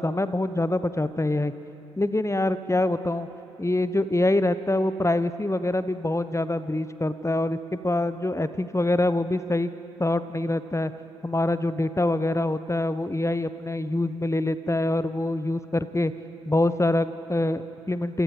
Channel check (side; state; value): both; normal; correlation 0.89